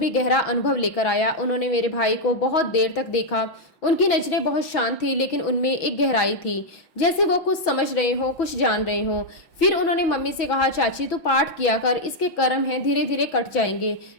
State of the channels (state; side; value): late; right; 6.1 ms